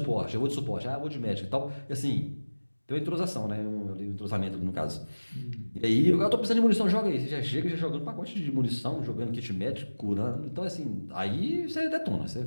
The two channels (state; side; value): inverted; both; correlation -1.00